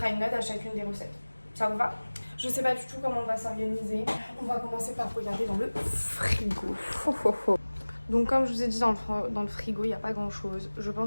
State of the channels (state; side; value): inverted; both; correlation -1.00